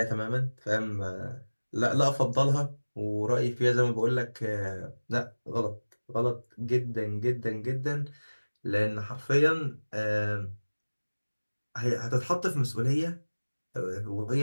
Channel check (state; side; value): inverted; both; correlation -1.00